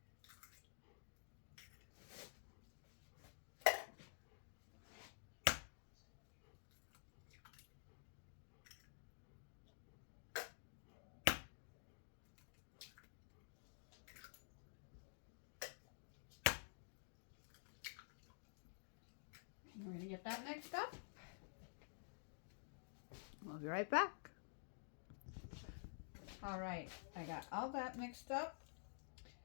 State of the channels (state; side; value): silent; right; digital silence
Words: We're going to get that mixed up. We'll be right back. All right, I got all that mixed up.